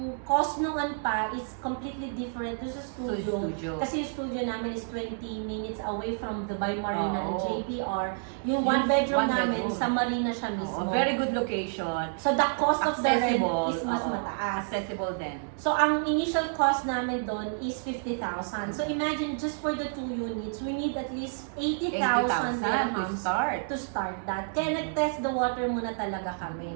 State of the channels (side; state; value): left; silent; digital silence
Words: cost noon pa is completely different doon sa studio. Kasi yung studio namin is 20 minutes away from Dubai Marina and JBR. Yung 1 bedroom namin, sa Marina siya mismo. Very good location. So, the cost of the rent Accessible. is mas mataas. Accessible din. So, ang initial cost namin doon is 50,000. So, imagine, just for the 2 units, we need at least 80,000 to dirhams start. to start that. Kaya nag-test the water muna talaga kami.